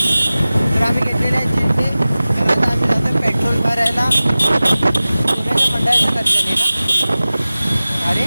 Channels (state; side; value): inverted; both; correlation -0.97